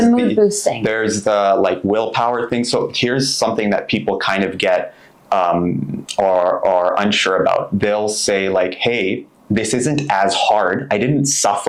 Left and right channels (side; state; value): both; identical; correlation 1.00